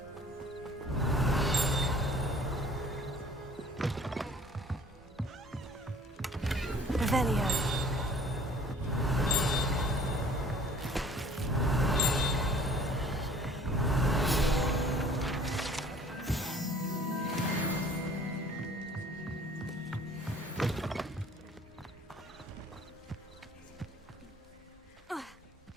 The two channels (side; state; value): both; normal; correlation 0.52